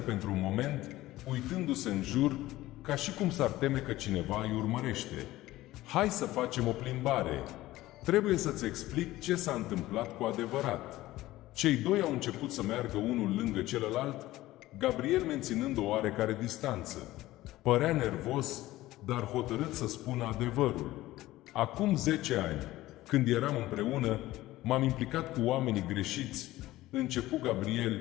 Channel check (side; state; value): right; quieter; 16.7 dB